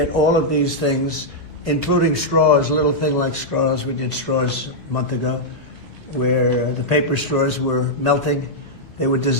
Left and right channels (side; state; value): both; normal; correlation -0.06